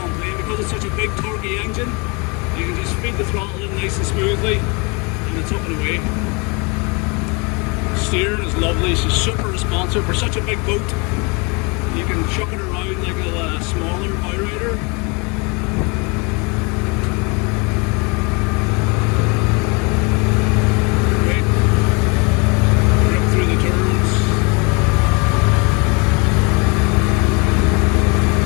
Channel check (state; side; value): quieter; right; 30.3 dB